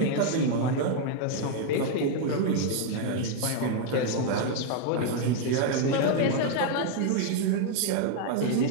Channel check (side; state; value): both; different; correlation 0.00